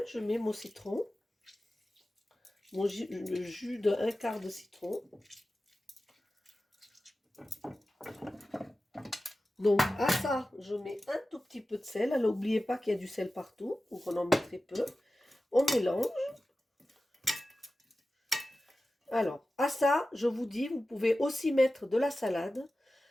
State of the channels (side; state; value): both; normal; correlation 0.94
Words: je mets mon citron. Le jus d'un quart de citron. Donc à ça, je mets un tout petit peu de sel. Alors n'oubliez pas qu'il y a du sel partout, donc on en met très peu. On mélange. Alors à ça, je vous dis, vous pouvez aussi mettre de la salade.